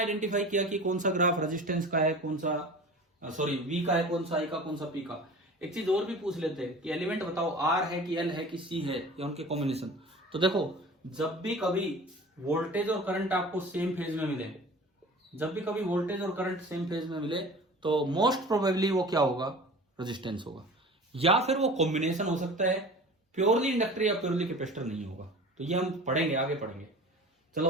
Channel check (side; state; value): both; normal; correlation 0.39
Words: किया कि कौन सा ग्राफ रेजिस्टेंस का है, कौन सा सॉरी वी का है, कौन सा आई का, कौन सा पी का। एक चीज और भी पूछ लेते हैं कि एलिमेंट बताओ आर है कि एल है कि सी है या उनके कॉम्बिनेशन। तो देखो, जब भी कभी वोल्टेज और करंट आपको सेम फेज में मिले, जब भी कभी वोल्टेज और करंट सेम फेज में मिले तो मोस्ट प्रोबेबली वो क्या होगा? रेजिस्टेंस होगा, या फिर वो कॉम्बिनेशन हो सकता है, प्योरली इंडक्टर या प्योरली कैपेसिटर नहीं होगा। तो ये हम पढ़ेंगे, आगे पढ़ेंगे। चलो